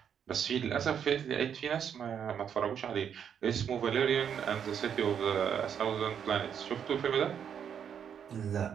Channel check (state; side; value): quieter; left; 8.2 dB